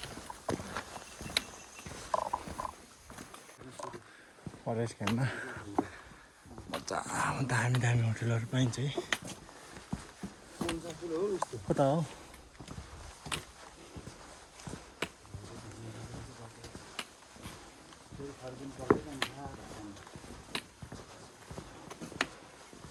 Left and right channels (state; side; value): identical; both; correlation 1.00